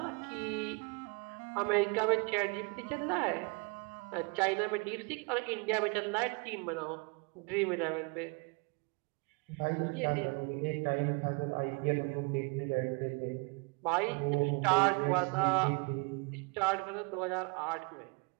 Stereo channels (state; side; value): quieter; left; 31.4 dB